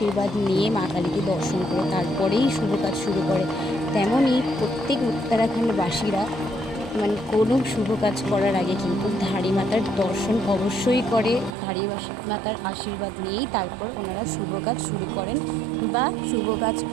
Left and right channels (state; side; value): drops out; left; at 11.5 s